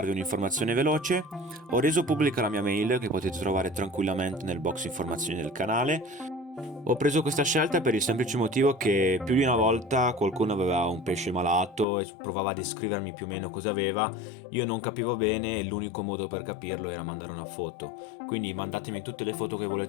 un'informazione veloce. Ho reso pubblica la mia mail che potete trovare tranquillamente nel box informazioni del canale. Ho preso questa scelta per il semplice motivo che più di una volta qualcuno aveva un pesce malato e provava a descrivermi più o meno cosa aveva. Io non capivo bene e l'unico modo per capirlo era mandare una foto. Quindi mandatemi tutte le foto che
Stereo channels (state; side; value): drops out; right; at 11.9 s